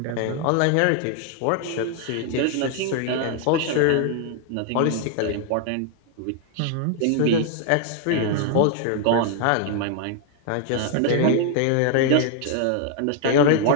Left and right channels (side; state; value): both; different; correlation 0.00